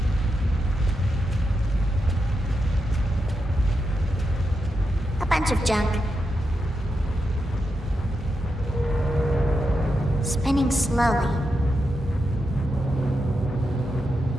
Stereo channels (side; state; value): both; normal; correlation 0.86